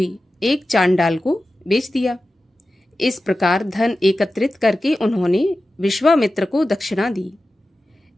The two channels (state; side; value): normal; both; correlation 0.94